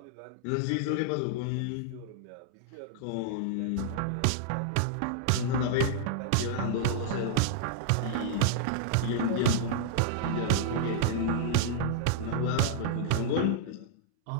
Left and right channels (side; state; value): both; different; correlation -0.01